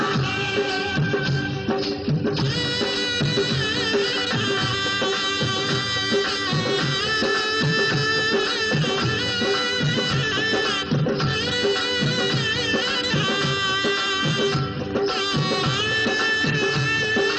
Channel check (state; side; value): identical; both; correlation 1.00